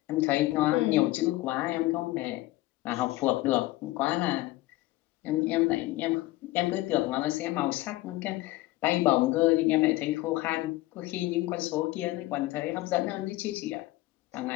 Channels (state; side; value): quieter; right; 18.4 dB